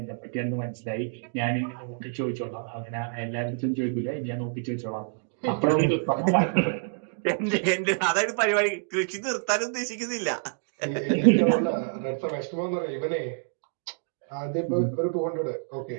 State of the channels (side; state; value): left; silent; digital silence